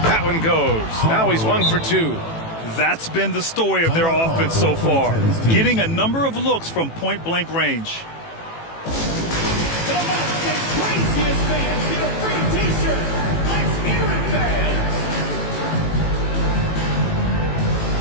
That one goes. Now he's 1 for 2. That's been the story of their offense so far, getting a number of looks from point-blank range.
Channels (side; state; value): right; late; 18 ms